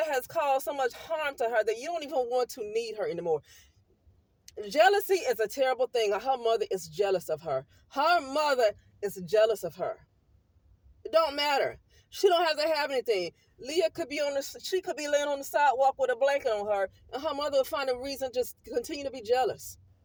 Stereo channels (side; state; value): both; identical; correlation 1.00